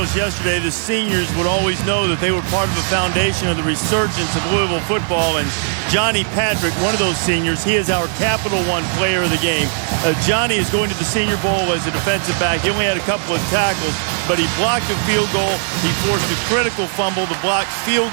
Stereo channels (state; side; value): silent; left; 67 dB below the other